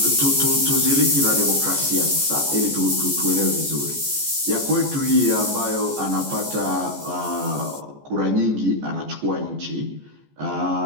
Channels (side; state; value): left; late; 14 ms